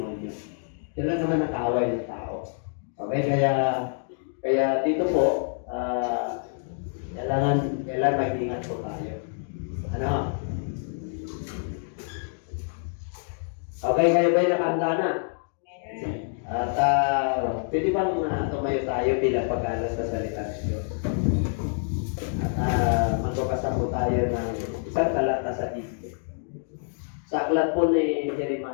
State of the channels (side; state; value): right; silent; digital silence